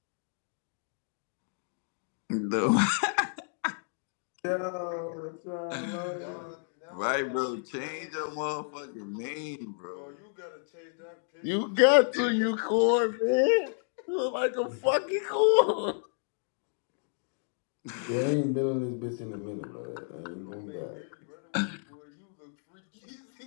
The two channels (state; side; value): silent; right; digital silence